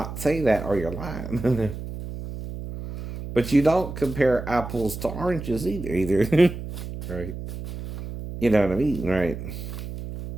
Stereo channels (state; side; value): noise; right; hum, 9 dB below the sound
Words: say that or you're lying. But you don't compare apples to oranges either. Right? You know what I mean, right?